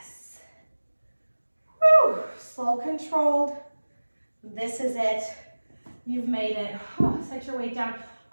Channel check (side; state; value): both; inverted; correlation -1.00